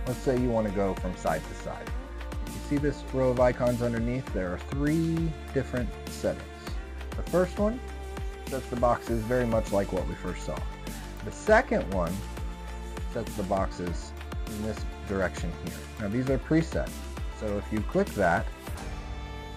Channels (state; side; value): identical; both; correlation 1.00